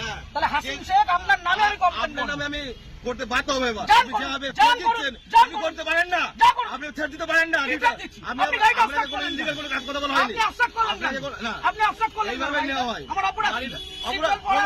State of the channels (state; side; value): identical; both; correlation 1.00